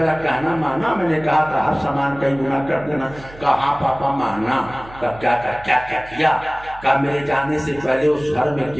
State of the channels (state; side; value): noise; right; hum, 19 dB below the sound